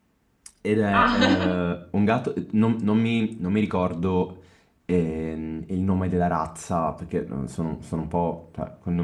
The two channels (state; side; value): identical; both; correlation 1.00